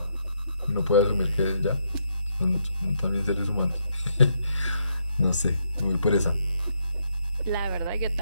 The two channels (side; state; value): both; inverted; correlation -0.77